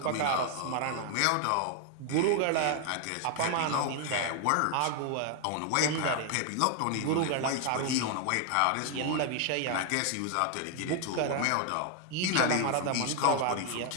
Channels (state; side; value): different; both; correlation 0.00